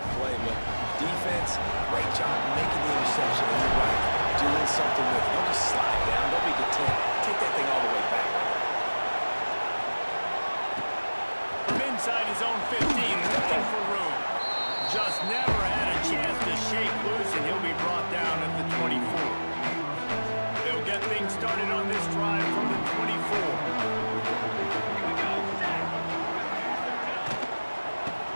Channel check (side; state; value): both; inverted; correlation -1.00